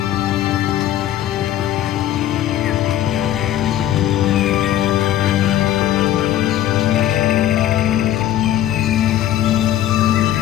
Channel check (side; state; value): right; quieter; 12.1 dB